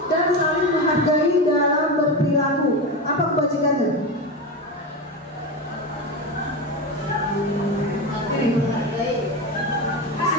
dan saling menghargai dalam berperilaku. Apa kebajikannya?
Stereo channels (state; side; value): normal; both; correlation 0.19